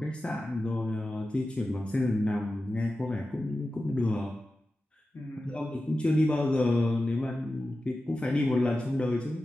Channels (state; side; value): normal; both; correlation 0.93